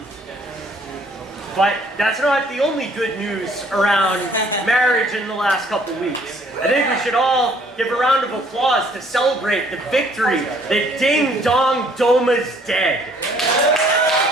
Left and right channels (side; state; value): both; normal; correlation 0.61